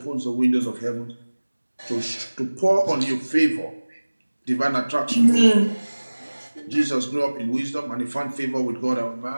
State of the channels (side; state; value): both; inverted; correlation -1.00